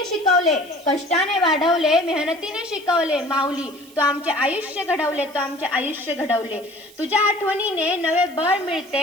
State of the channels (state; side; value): noise; right; hiss, 23 dB below the sound